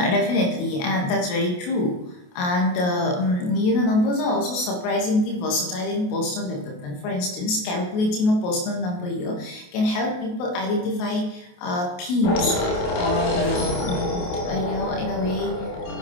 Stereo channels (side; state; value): right; late; 28 ms